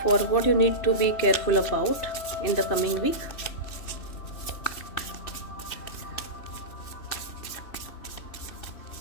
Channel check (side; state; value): right; late; 2.6 ms